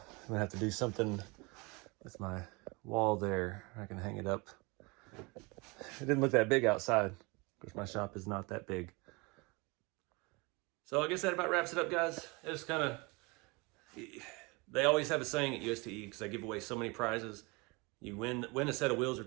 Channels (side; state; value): left; quieter; 27.0 dB